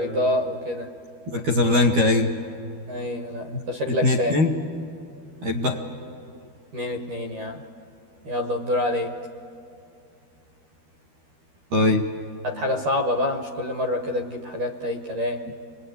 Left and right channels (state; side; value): late; left; 13 ms